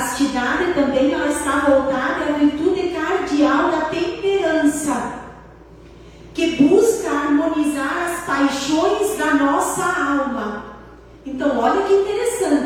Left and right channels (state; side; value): identical; both; correlation 1.00